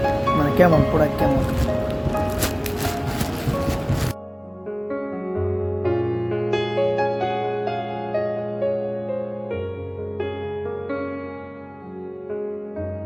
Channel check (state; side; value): identical; both; correlation 1.00